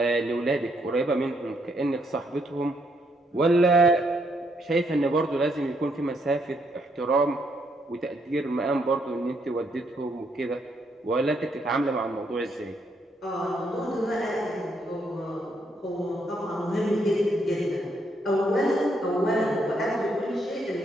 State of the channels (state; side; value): normal; both; correlation 0.74